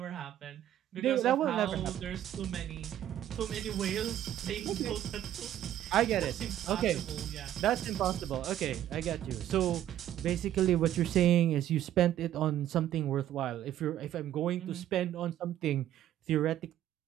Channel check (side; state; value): left; quieter; 11.9 dB